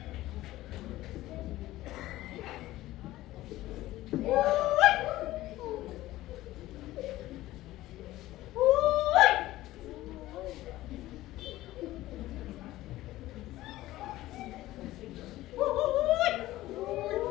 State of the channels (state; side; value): quieter; right; 16.3 dB